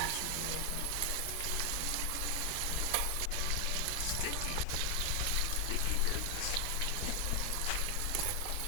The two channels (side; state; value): both; different; correlation 0.00